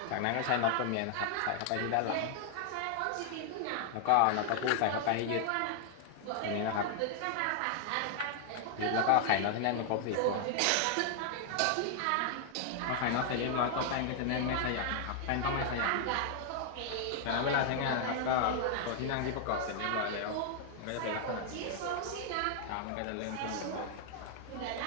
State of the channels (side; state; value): both; different; correlation 0.00